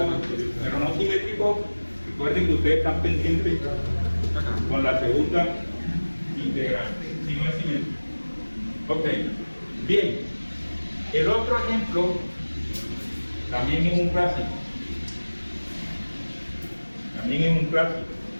pero no simétrico. Recuerden que ustedes están pendientes con la segunda integral, si no es simétrico. Ok, bien. El otro ejemplo también es un clásico. También es un clásico.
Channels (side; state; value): both; inverted; correlation -1.00